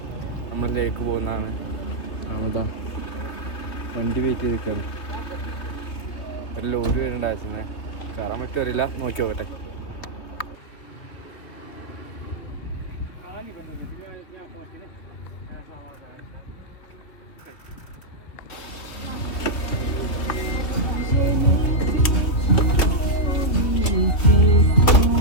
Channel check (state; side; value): late; right; 3.2 ms